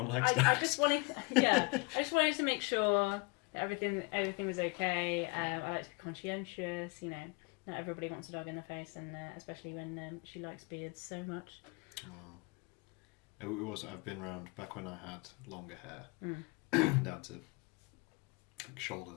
likes dogs. I just wanted to make sure that everything was okay. I like to be conscientious. You know, not everybody wants a dog in their face, and especially when she likes beards so much. Oh. It was. I've been around back when I had longer hair, down to like shoulder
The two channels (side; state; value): right; quieter; 28.0 dB